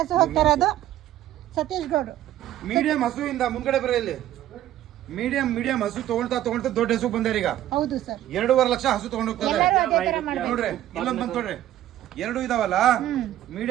ಹೋಗ್ತಾ ಇರೋದು ಸತೀಶ್ ಗೌಡ್ರು. ಮೀಡಿಯಂ ಹಸು ಇಂದ ಮುಂದ್ಗಡೆ ಬರ ಇಲ್ಲಿ. ಮೀಡಿಯಂ ಹಸು ತಗೊಳ್ತಾ ದೊಡ್ಡ ಹಸು ಬಂದಾರ ಈಗ. ಹೌದು ಸರ್, 2.5 ಲಕ್ಷ ಹಸು ತಗೊಂಡು ಹೋಗ್ತಾರೆ. ಎಲ್ಲರೂ ಅದೇ ತರ ಮಾಡ್ಬೇಕು ನೋಡ್ರಿ ಇಲ್ಲೊಂದ್ ಬಂದ್ ನೋಡ್ರಿ, 2 ಇದಾವಲ್ಲ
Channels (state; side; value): quieter; left; 13.0 dB